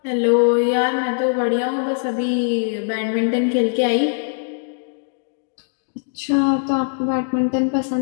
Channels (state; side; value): silent; right; digital silence